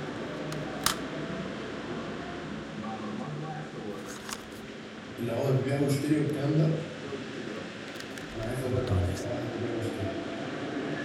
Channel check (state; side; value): identical; both; correlation 1.00